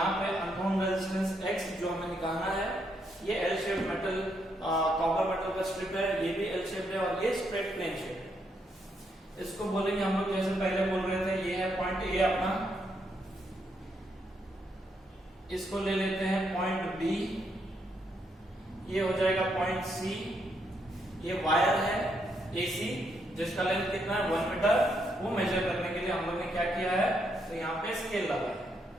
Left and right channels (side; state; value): both; normal; correlation 0.77